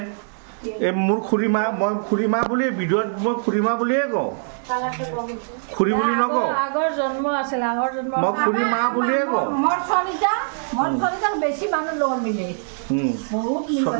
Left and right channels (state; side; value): silent; left; digital silence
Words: এই মোৰ খুৰীমা, মই খুৰীমা বুলি ভিডিঅ'ত মই খুৰীমা বুলিয়ে কওঁ, খুৰী বুলি নকওঁ। আগৰ জন্ম আছিল, আগৰ জন্ম মই খুৰীমা বুলিয়ে কওঁ। মোৰ ছোৱালীটা বেছি মানুহ লগত মিলে, বহুত